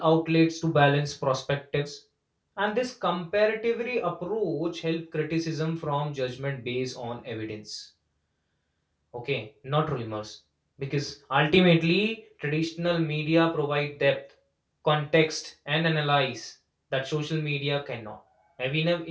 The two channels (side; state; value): both; identical; correlation 1.00